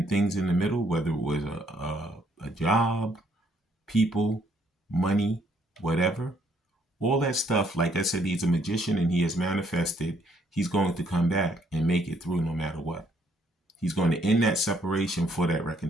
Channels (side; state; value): both; normal; correlation 0.68